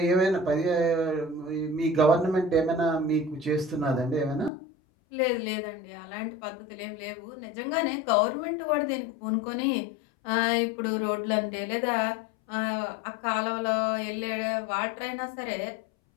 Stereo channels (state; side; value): drops out; right; at 4.5 s